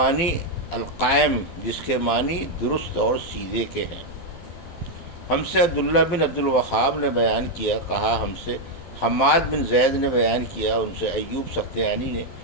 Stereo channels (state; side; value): late; right; 12 ms